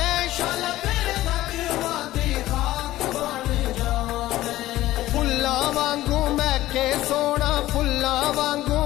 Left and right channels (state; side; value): quieter; right; 15.6 dB